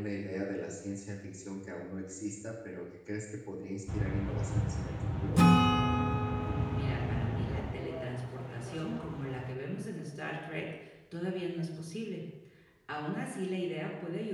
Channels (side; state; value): both; identical; correlation 1.00